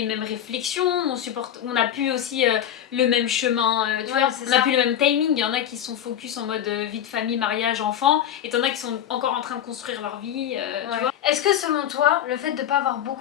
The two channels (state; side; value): quieter; right; 10.4 dB